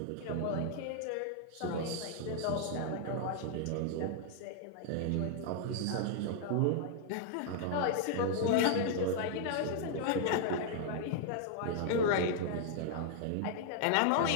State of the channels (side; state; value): both; different; correlation -0.01